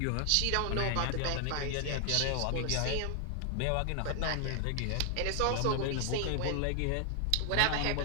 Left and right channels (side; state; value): both; different; correlation 0.00